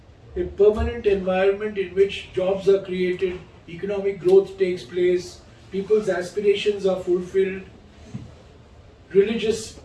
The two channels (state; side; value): identical; both; correlation 1.00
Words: A permanent environment in which jobs are created, economic growth takes place, people's aspirations are fulfilled, religious